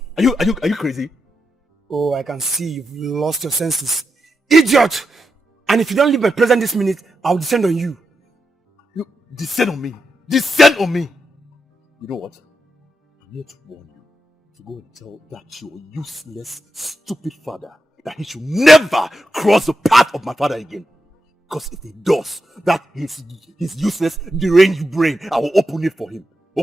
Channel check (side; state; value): both; normal; correlation 0.87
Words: Are you crazy? Oh, I can see you've lost your senses. Idiot! And if you don't leave my presence this minute, I'll descend on you. You descend on me. Descend on me. You know what? I'm here to warn you to go and tell that your useless, stupid father that he should never cross the path of my father again. Because if he does, that his useless, deranged brain, I will open it for him.